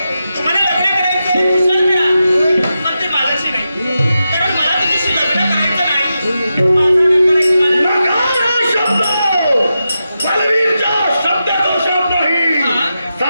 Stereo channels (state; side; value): inverted; both; correlation -0.89